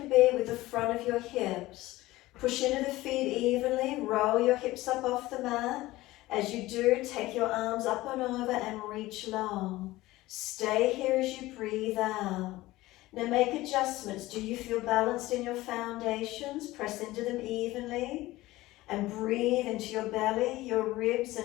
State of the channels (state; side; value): quieter; right; 18.0 dB